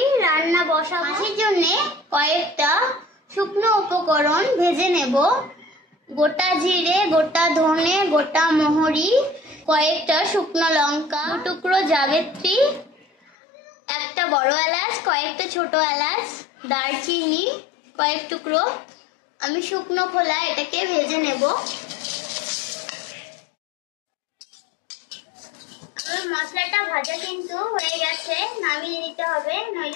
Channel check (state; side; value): drops out; right; at 13.3 s